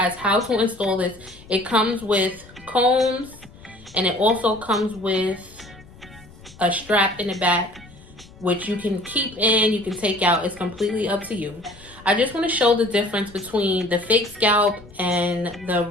how to install this. It comes with combs and it also comes with a strap in the back, which you can keep in, you can take out. It's completely up to you. I just want to show the difference between the fake scalp and the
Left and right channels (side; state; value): left; noise; rumble, 21 dB below the sound